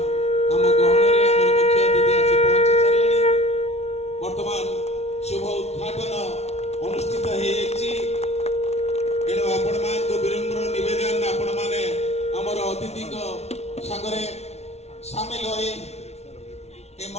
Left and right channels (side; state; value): right; late; 0.31 ms